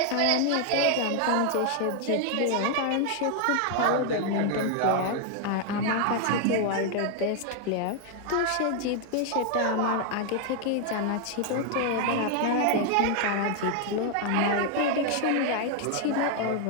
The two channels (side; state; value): both; different; correlation 0.00